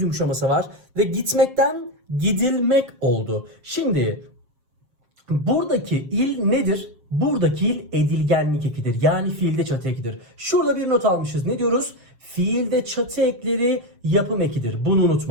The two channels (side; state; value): left; late; 7.5 ms